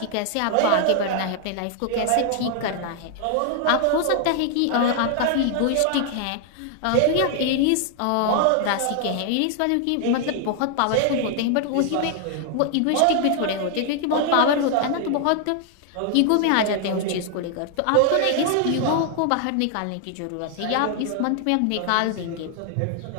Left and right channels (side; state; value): both; different; correlation 0.00